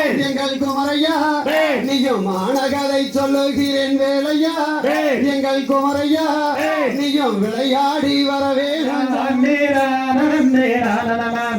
எங்கள் குமரையா, நீயும் மானகதை சொல்லுகிறேன் வேலையா எங்கள் குமரையா, நீயும் விளையாடி வரவே.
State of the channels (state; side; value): identical; both; correlation 1.00